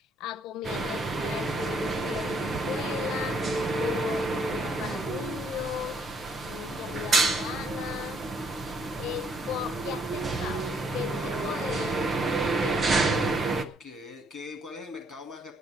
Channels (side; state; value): both; normal; correlation 0.69